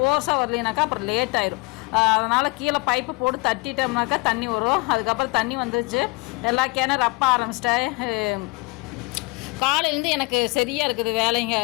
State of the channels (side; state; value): right; quieter; 25.9 dB